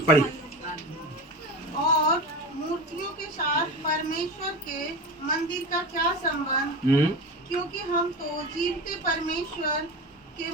पढ़िए। और मूर्तियों के साथ परमेश्वर के मंदिर का क्या संबंध? क्योंकि हम तो जीवते परमेश्वर के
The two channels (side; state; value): both; normal; correlation 0.27